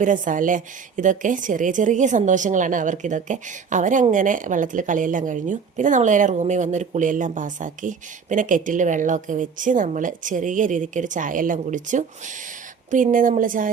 അല്ലേ. ഇതൊക്കെ ചെറിയ ചെറിയ സന്തോഷങ്ങളാണ് അവർക്കിതൊക്കെ. അവരങ്ങനെ വെള്ളത്തിൽ കളിയെല്ലാം കഴിഞ്ഞു. പിന്നെ നമ്മൾ നേരെ റൂമിൽ വന്നൊരു കുളിയെല്ലാം പാസ്സാക്കി. പിന്നെ കെറ്റിൽ വെള്ളമൊക്കെ വെച്ച് നമ്മൾ ചെറിയ രീതിക്കൊരു ചായ എല്ലാം കുടിച്ചു. പിന്നെ നമ്മൾ ചായ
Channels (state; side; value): quieter; left; 6.0 dB